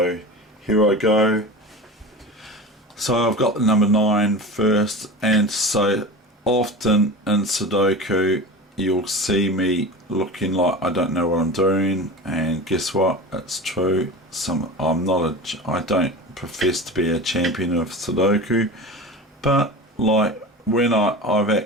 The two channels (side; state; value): both; normal; correlation 0.31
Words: here I go. So I've got the number 9 first, and so often in Sudoku you'll see me looking like I don't know what I'm doing, and guess what, it's true. I don't profess to be a champion of Sudoku, but like when I've